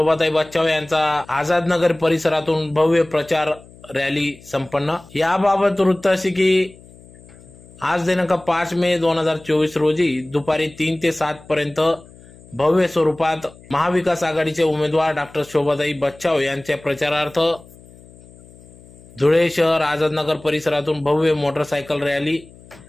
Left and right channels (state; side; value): noise; left; hum, 23 dB below the sound